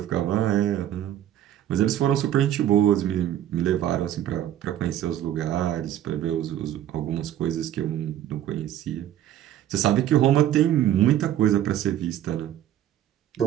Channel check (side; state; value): left; quieter; 11.7 dB